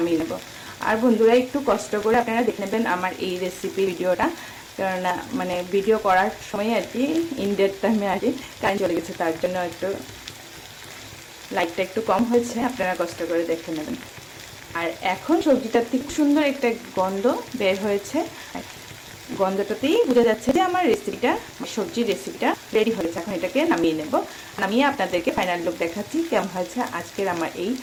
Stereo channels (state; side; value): identical; both; correlation 1.00